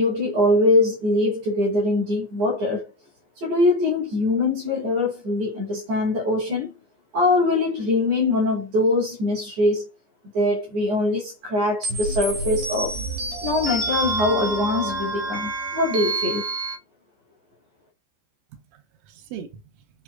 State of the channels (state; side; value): late; left; 14 ms